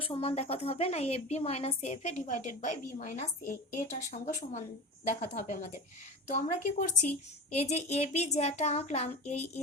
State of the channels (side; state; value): both; normal; correlation 0.30